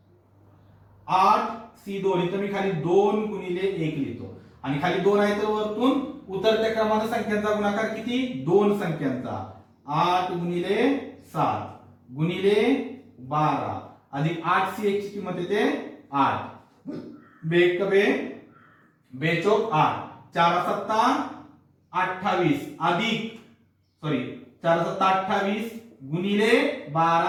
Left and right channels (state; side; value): identical; both; correlation 1.00